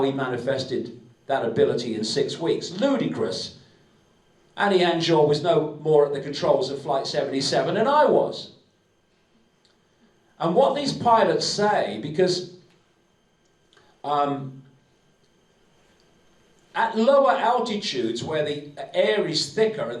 he manifested that ability in 6 weeks. Ludicrous. Hani Hanjour was no more at the controls of Flight 77 than I was. And what these pilots say, because at lower altitudes where the air is thicker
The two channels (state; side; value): identical; both; correlation 1.00